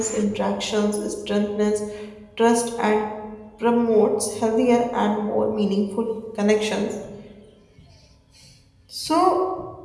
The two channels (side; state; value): both; identical; correlation 1.00